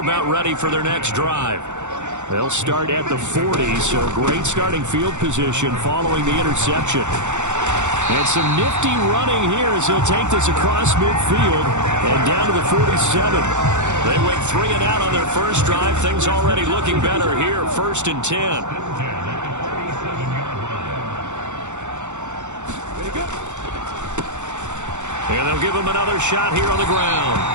ready for their next drive. They'll start at the 40, so great starting field position following the interception. And some nifty running here as he'll take this across midfield and down to the 47. They went 3 and out on their first drive. Things already looking better here. 1st and 10. And they'll give him another shot here on the ground.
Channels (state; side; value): late; left; 0.84 ms